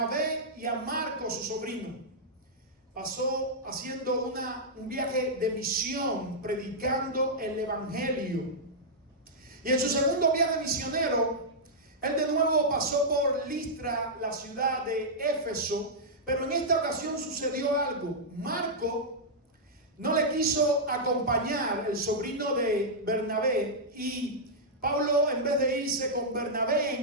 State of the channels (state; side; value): normal; both; correlation -0.09